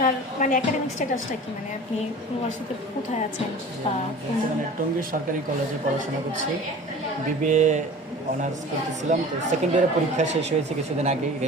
মানে একাডেমিক স্ট্যাটাসটা কি, মানে আপনি ইউনিভার্সিটিতে কোথায় আছেন বা কোন বর্তমানে টঙ্গী সরকারি কলেজে পড়াশোনা করছি, বিবিএ অনার্স করতেছিলাম। তো সেকেন্ড ইয়ারের পরীক্ষা শেষ হয়েছে কিছুদিন আগেই,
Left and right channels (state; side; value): normal; both; correlation 0.40